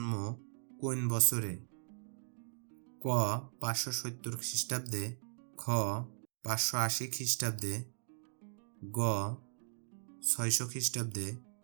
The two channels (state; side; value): silent; left; digital silence